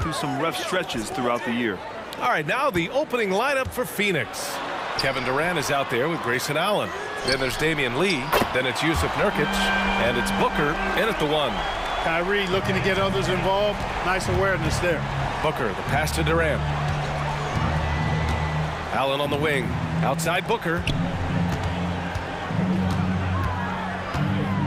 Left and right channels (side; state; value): both; identical; correlation 1.00